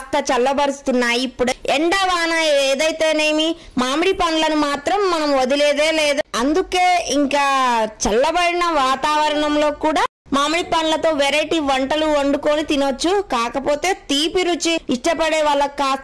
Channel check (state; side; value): identical; both; correlation 1.00